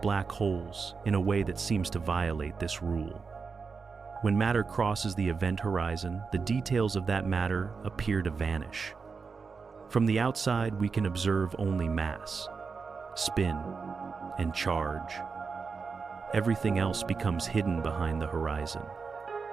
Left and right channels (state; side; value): quieter; left; 5.0 dB